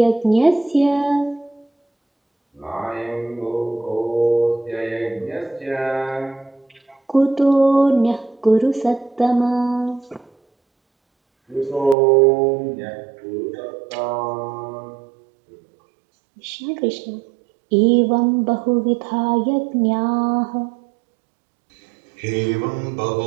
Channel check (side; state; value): left; drops out; at 12.0 s